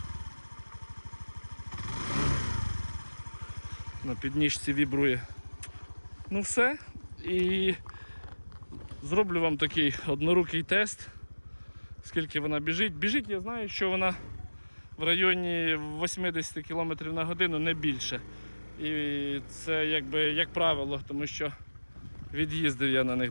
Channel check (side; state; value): both; inverted; correlation -1.00